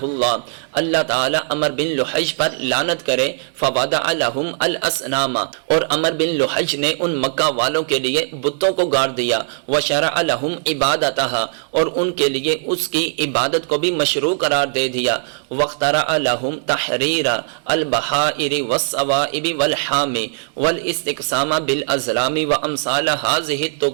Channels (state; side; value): silent; left; 63 dB below the other